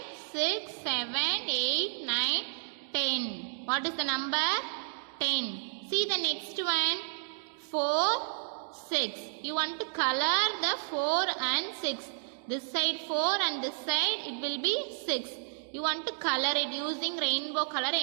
6, 7, 8, 9, 10. What is the number? 10. See the next one. 4, 6. You want to color the 4 and 6. This side 4 and this side it will be 6. You want to color it using rainbow color.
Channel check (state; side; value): silent; left; digital silence